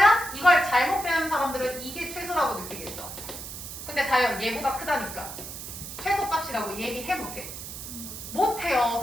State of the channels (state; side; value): noise; right; hiss, 10 dB below the sound